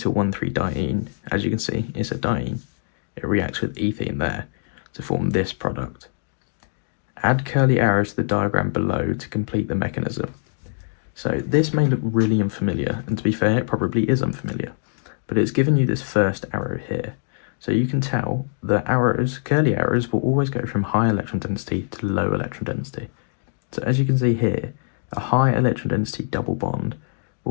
As you can see, it's a diene. It reacts with ethene there to form this product. Add curly arrows to the diagram below to complete the mechanism. So this may look really unfamiliar, and to be fair, it probably is unfamiliar, but it's given you this first arrow here. So you can tell that arrows, curly arrows, will always go from high electron density to low electron density. So as you can see here, a high electron density double bond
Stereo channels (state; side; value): silent; right; digital silence